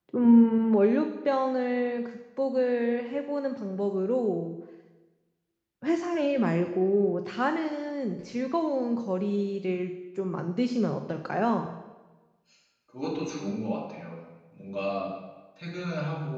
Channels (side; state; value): both; identical; correlation 1.00